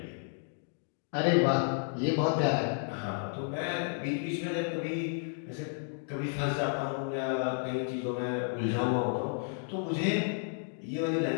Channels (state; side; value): silent; right; 56 dB below the other